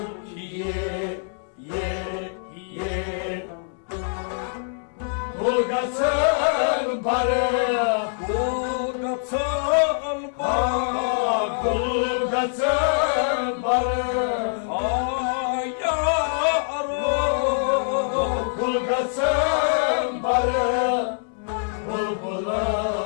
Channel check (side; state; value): right; silent; digital silence